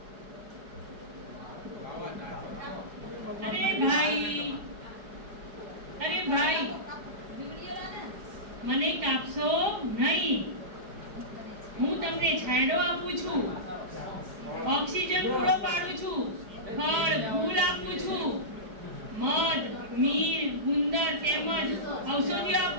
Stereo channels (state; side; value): late; left; 4.8 ms